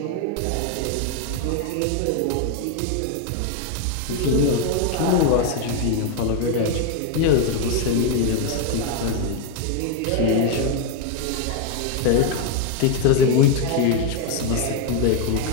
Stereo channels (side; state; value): both; different; correlation 0.01